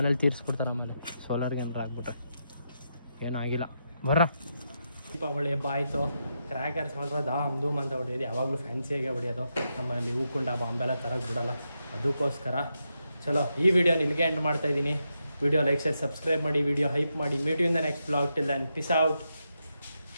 ತೀರಿಸ್ಬಿಡ್ತಾರೆ ಆಮೇಲೆ ಸೋಲಾರ್ಗೆ ಏನಾರು ಆಗ್ಬಿಟ್ರೆ. ಏನೂ ಆಗಿಲ್ಲ ಬರ್ರ. ದೀಪಾವಳಿ ಹಬ್ಬ ಆಯಿತು. ಕ್ರ್ಯಾಕರ್ಸ್ ಮಾತ್ರ ಧೂಮ್ ಅಂತ ಹೊಡೆಯೋದು. ಯಾವಾಗಲೂ ಫ್ಯಾನ್ಸಿಯಾಗೆ ಹೊಡೆಯೋದು. ನಮ್ಮಲ್ಲಿ ಹೂಕುಂಡ ಬಾಂಬೆಲ್ಲ ತರಕ್ಕೆ ಬಿಡೋಲ್ಲ. ಅದಕ್ಕೋಸ್ಕರ ಚಲೋ ಈ ವಿಡಿಯೋನ ಇಲ್ಲಿಗೆ ಎಂಡ್ ಮಾಡ್ತಾಯಿದ್ದೀನಿ. ವಿಡಿಯೋ ಲೈಕ್ ಶೇರ್ ಸಬ್ಸ್ಕ್ರೈಬ್ ಮಾಡಿ, ವಿಡಿಯೋ ಹೈಪ್ ಮಾಡಿ. Meet you in the next blog. Till then peace out,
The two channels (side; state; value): both; inverted; correlation -0.84